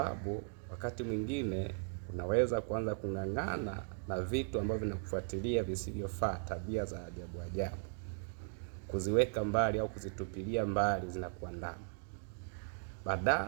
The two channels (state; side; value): silent; left; 53 dB below the other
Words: wakati mwingine unaweza kuanza kung'ang'ana na vitu ambavyo vinakufuatilia visivyofaa, tabia za ajabu ajabu. Kuziweka mbali au kuzitupilia mbali zinakuandama.